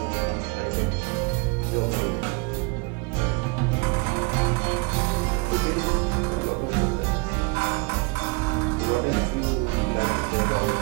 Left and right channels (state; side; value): quieter; left; 29.7 dB